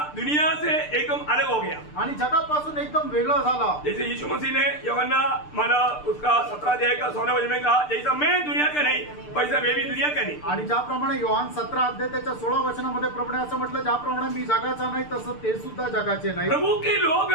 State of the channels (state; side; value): late; right; 6.7 ms